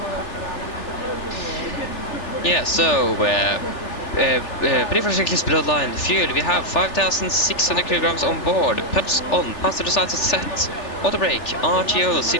Yeah, so, pre-for checklist below the line. Fuel, we have 5,600 kilograms on board. Pumps on, passenger side set. Auto brake, RTO,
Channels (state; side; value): late; right; 3.4 ms